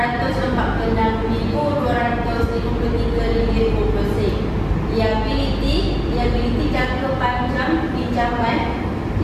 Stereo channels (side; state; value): both; identical; correlation 1.00